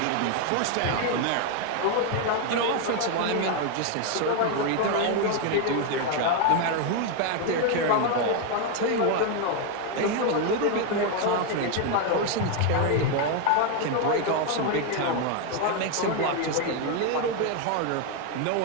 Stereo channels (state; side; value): different; both; correlation 0.01